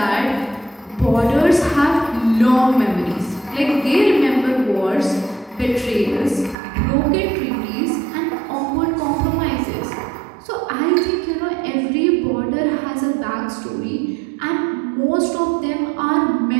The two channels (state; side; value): drops out; left; at 6.6 s